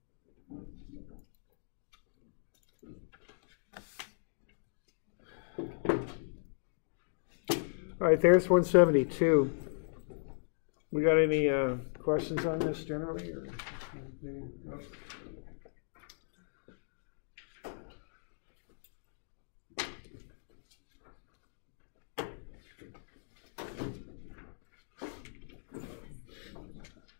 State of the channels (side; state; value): right; silent; digital silence